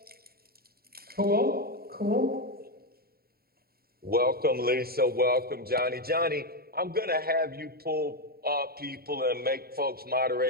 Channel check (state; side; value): late; left; 0.45 ms